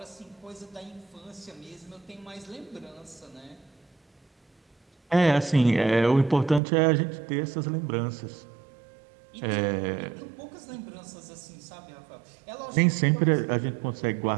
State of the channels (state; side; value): drops out; left; at 6.6 s